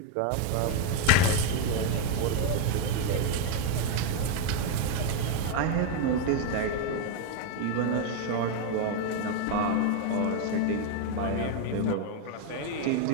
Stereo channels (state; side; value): different; both; correlation 0.01